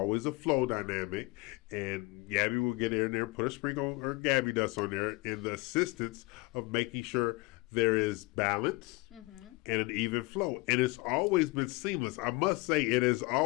a flow dynamic. And Gaby will get in there and put a sprinkle, or Gaby does on there, in the assistance of making sure there is balance and an even flow. And it's always been seamless. I must say, it has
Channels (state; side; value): quieter; right; 24.4 dB